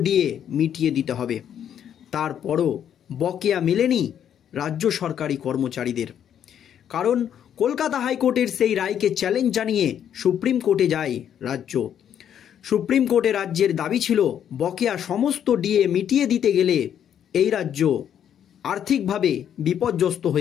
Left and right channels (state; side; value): quieter; right; 9.4 dB